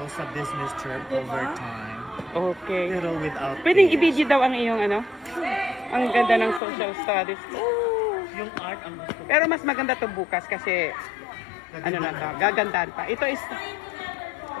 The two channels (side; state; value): right; drops out; at 6.6 s